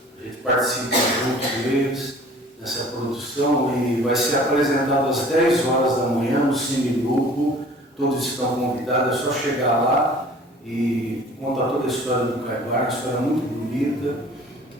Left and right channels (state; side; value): normal; both; correlation 0.48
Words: A gente participa junto deles nessa produção e vai ser apresentado às 10 horas da manhã no Cine Grupo. Todos estão convidados, é só chegar lá e contar toda a história do Caibar, uma história muito bonita.